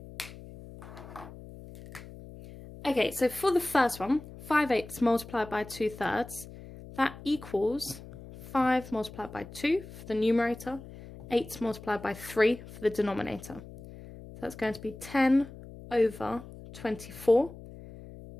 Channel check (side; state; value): left; noise; hum, 16 dB below the sound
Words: Okay, so for the first one, 5/8 multiplied by 2/3, that equals 5 multiplied by 2 for the numerator, 8 multiplied by 3 for the denominator. So that's going to be 10/24,